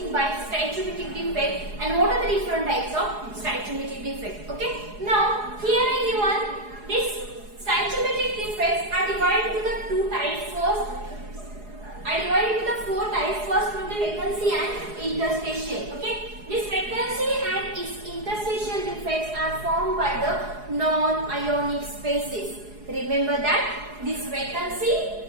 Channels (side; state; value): left; late; 4.8 ms